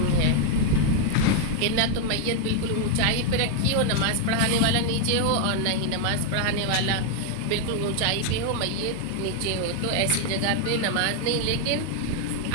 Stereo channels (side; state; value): both; different; correlation 0.00